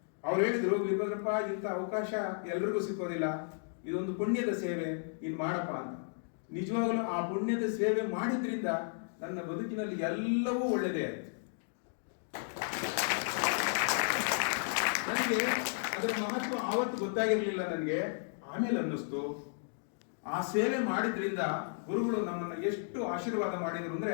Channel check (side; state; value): right; silent; digital silence